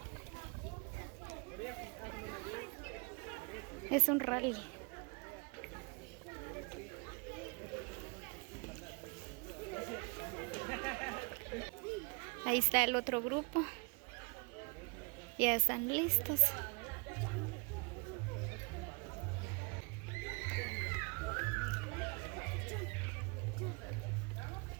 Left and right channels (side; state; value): left; quieter; 32.4 dB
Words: Es un rally. Ahí está el otro grupo. Ya están listos.